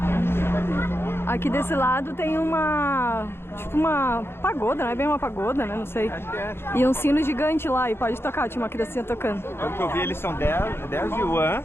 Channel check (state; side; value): late; right; 0.11 ms